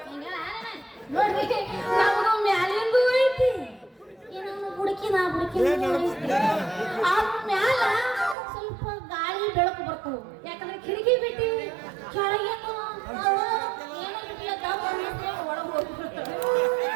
ನೋಡ್ರಿ, ನಮಗೂ ಮ್ಯಾಲಿಂದು ಐತಿ, ಏನೋ ಬುಡಕಿನ ಆ ಮ್ಯಾಲ ಸ್ವಲ್ಪ ಗಾಳಿ ಬೆಳಕು ಬರ್ತವು. ಯಾಕಂದ್ರೆ ಕಿಟಕಿ ಬಿಟ್ಟಿ ಕೆಳಗೇನು ಏನೋ ಬಿಟ್ಟಿಲ್ಲ, ದಮ್ ಅನ್ನಿಸ್ತೇವೆ, ಒಳಗೆ ಹೋಗ್ಬಿಡ್ತೇವೆ.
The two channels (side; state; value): left; drops out; at 8.3 s